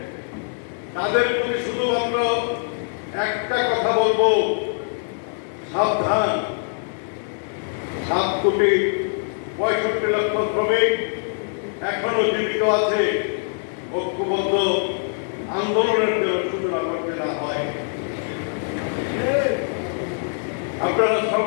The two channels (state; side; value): silent; right; digital silence